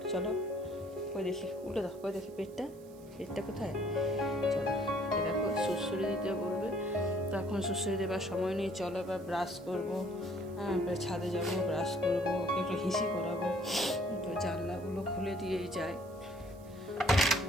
চলো। ওই দেখি উল্টো দাও, ওই দেখি পেটটা, পেটটা কোথায়। চলো এ দেখো সুড়সুড়ি দিতে বলবে, তো এখন সুড়সুড়ি দেবার সময় নেই। চলো এবার ব্রাশ করবো, হ্যাঁ ছাদে যাবো, ব্রাশ করবো, ওকে একটু হিসি করাবো। তো জানলাগুলো খুলে দিয়েই যায়।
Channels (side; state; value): right; noise; hiss, 26 dB below the sound